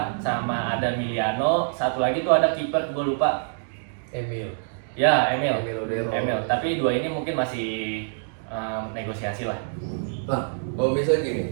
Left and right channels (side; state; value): left; silent; digital silence